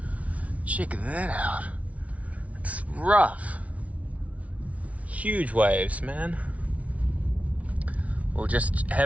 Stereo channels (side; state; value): left; late; 0.067 ms